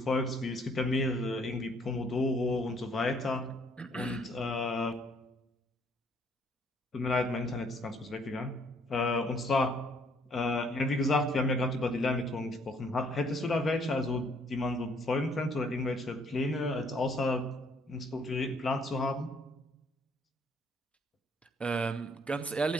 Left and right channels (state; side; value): normal; both; correlation 0.64